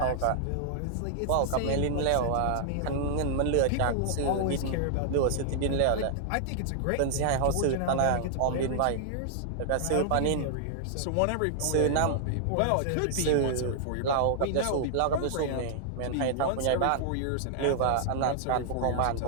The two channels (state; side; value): different; both; correlation -0.01